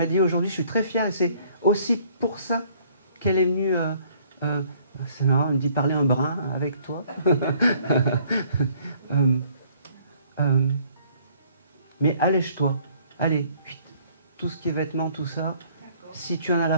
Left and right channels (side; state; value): both; inverted; correlation -0.60